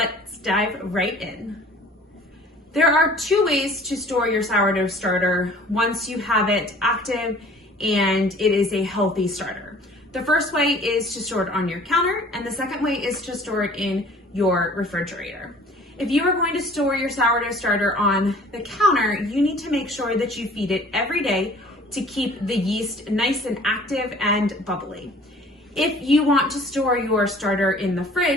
dive right in. There are two ways to store your sourdough starter once you have it active and it is a healthy starter. The first way is to store it on your counter, and the second way is to store it in your refrigerator. If you are going to store your sourdough starter on the counter, you need to make sure that you feed it every day to keep the yeast nice and active and bubbly. If you want to store your starter in the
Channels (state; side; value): normal; both; correlation 0.50